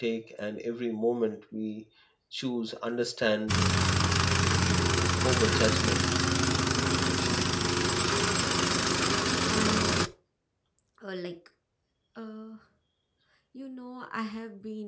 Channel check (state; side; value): identical; both; correlation 1.00